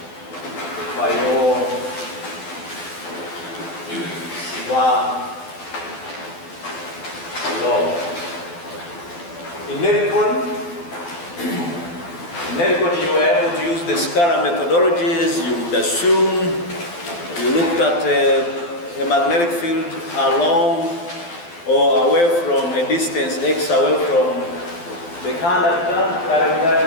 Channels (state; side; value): late; right; 12 ms